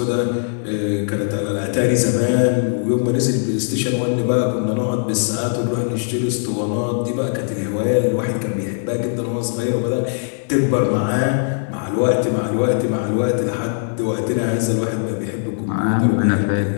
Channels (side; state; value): right; silent; digital silence